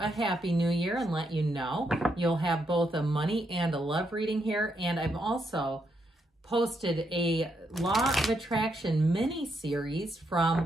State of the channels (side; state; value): both; normal; correlation 0.79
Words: Happy New Year and let you know you'll have both a money and a love reading here, and I've also posted a Law of Attraction mini-series